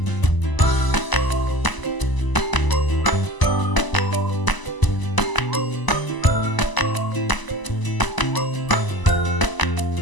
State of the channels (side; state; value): right; late; 1.0 ms